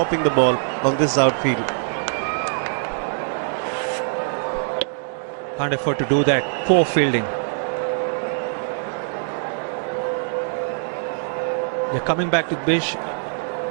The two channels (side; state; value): left; silent; digital silence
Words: the ball on this outfield. Can't afford to do that. Poor fielding. They're coming back to Bish.